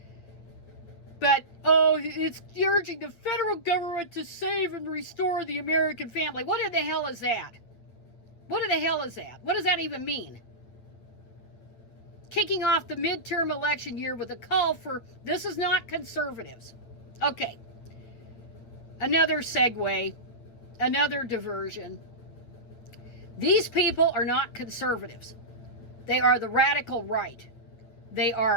But, oh, it's urging the federal government to save and restore the American family. What in the hell is that? What in the hell is that? What does that even mean? Kicking off the midterm election year with a call for, this is not conservatives. Okay. Another segue, another diversion. These people are not conservatives. They are the radical right. They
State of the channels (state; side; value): late; right; 8.8 ms